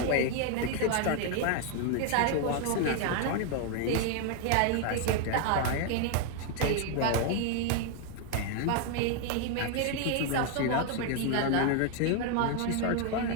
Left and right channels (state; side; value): different; both; correlation 0.00